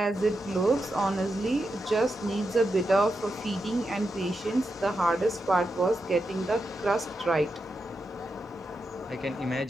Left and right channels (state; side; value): normal; both; correlation 0.87